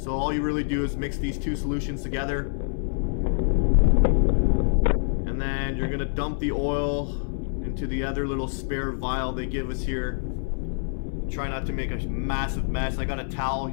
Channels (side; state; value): right; silent; 58 dB below the other